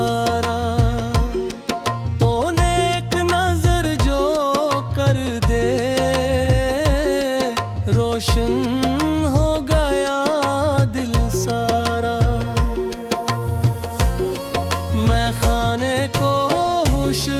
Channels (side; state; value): both; identical; correlation 1.00